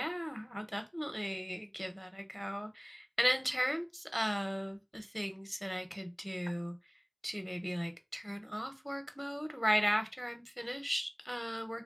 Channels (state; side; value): identical; both; correlation 1.00